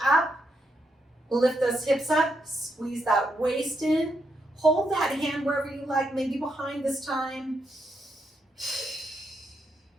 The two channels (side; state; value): both; normal; correlation 0.80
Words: up, lift those hips up, squeeze that waist in, hold that hand wherever you like, maybe behind this time.